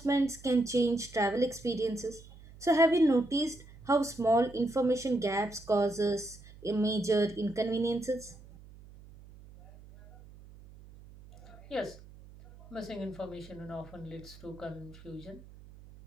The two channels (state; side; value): noise; right; hum, 20 dB below the sound